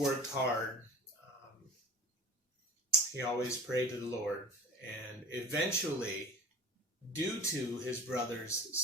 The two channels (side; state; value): both; normal; correlation 0.38